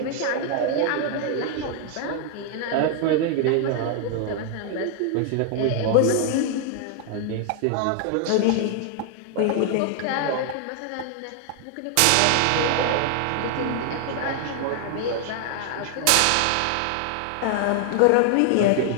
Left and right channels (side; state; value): both; different; correlation 0.00